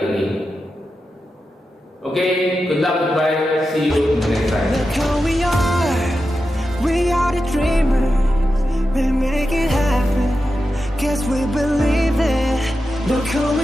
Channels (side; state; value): both; normal; correlation 0.90